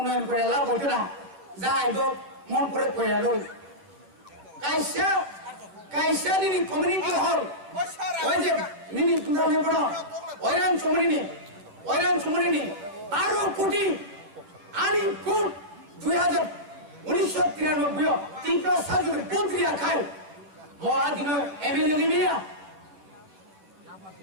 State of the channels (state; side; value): late; left; 10 ms